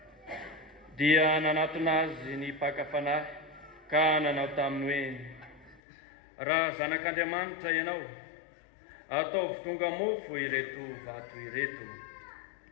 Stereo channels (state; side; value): drops out; right; at 5.8 s